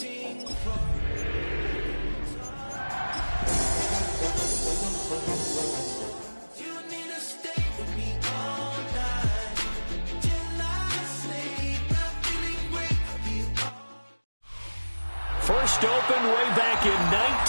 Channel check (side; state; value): both; inverted; correlation -1.00